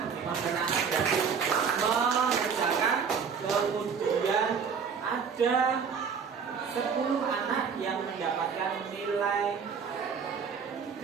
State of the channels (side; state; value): left; quieter; 6.3 dB